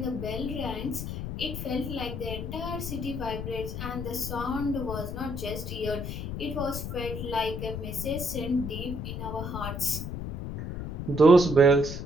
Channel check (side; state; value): left; noise; rumble, 5 dB below the sound